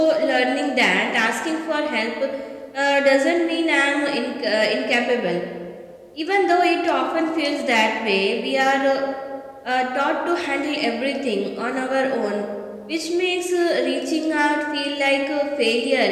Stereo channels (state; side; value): identical; both; correlation 1.00